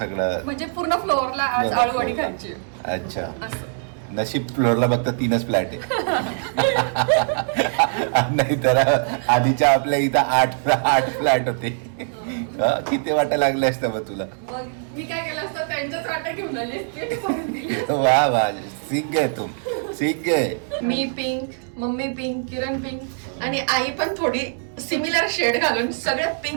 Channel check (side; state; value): left; silent; digital silence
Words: म्हणजे पूर्ण फ्लोअरला आज आळूवडी खायची. अच्छा, असं नशीब फ्लोअरला फक्त 3च फ्लॅट आहे. नाही तर आधीच्या आपल्या इथं 8 फ्लॅट होते. किती वाटा लागले असतं मग तुला? मग मी काय केलं असतं, त्यांच्याच वाटा घेऊन आली. वा वा, सीख गए तुम, सीख गए. मी पिंक, मम्मी पिंक, किरण पिंक आणि आई पण थोडी सिमिलर शेड घालून सगळे